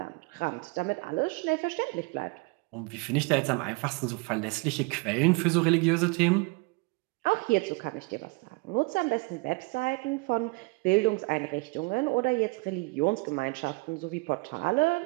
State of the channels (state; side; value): quieter; left; 28.0 dB